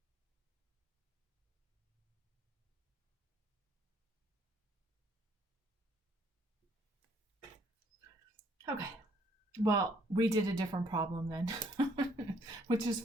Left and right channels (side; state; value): both; normal; correlation 0.65